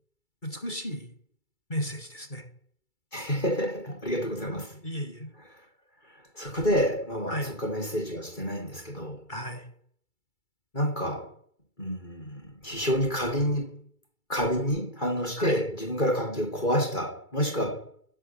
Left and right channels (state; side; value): late; right; 2.3 ms